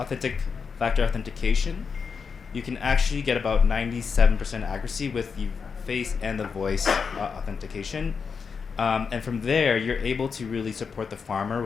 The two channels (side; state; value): right; quieter; 5.7 dB